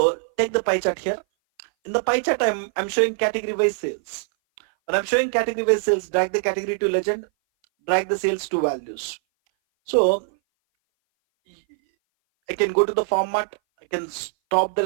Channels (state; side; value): silent; left; 59 dB below the other